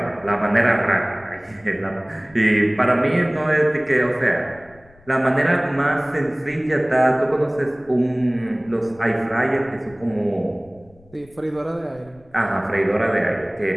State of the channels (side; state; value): left; noise; rumble, 27 dB below the sound